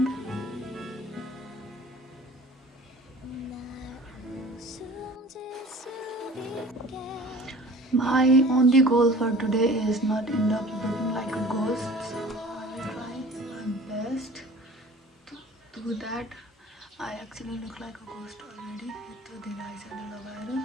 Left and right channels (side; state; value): both; normal; correlation 0.45